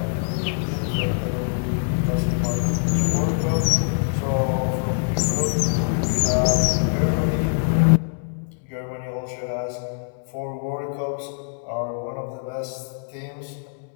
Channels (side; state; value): right; silent; 63 dB below the other